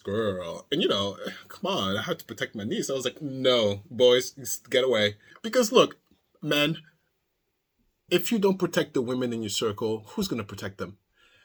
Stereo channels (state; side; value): identical; both; correlation 1.00